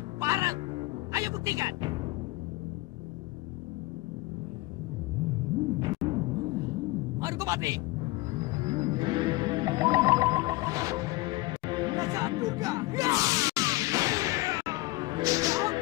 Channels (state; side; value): quieter; right; 21.0 dB